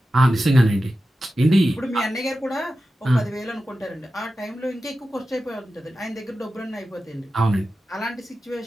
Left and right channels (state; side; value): normal; both; correlation 0.93